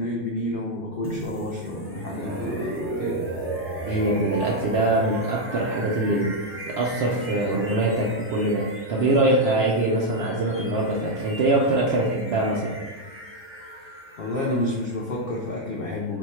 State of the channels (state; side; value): normal; both; correlation 0.02